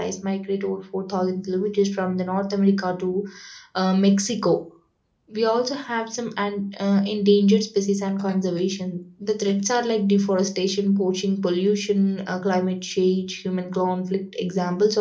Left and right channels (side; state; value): both; identical; correlation 1.00